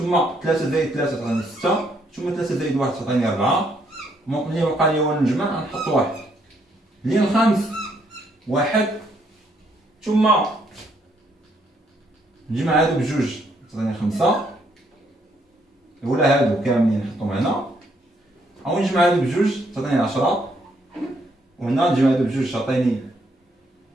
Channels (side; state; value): both; normal; correlation 0.71